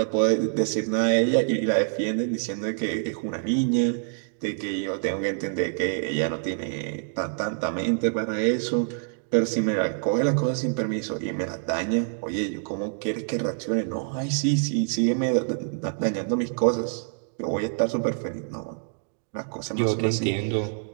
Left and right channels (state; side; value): silent; left; digital silence